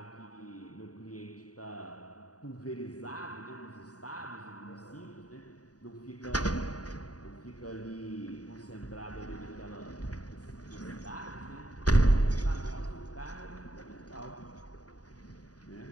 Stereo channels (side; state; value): right; late; 0.68 ms